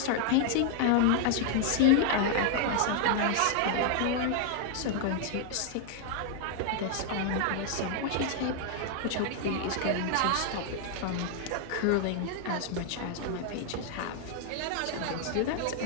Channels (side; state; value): both; different; correlation 0.00